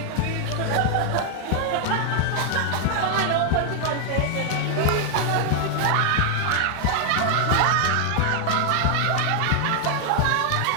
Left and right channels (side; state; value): both; different; correlation 0.00